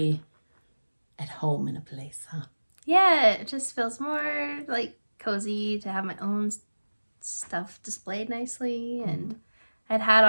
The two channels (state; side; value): inverted; both; correlation -1.00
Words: at home in a place, huh? Yeah, it just feels more like cozy to have my own stuff displayed nicely. And I'd had